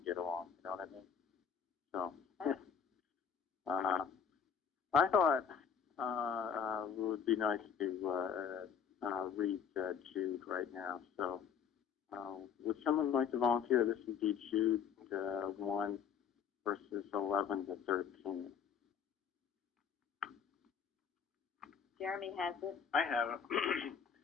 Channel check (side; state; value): right; quieter; 7.1 dB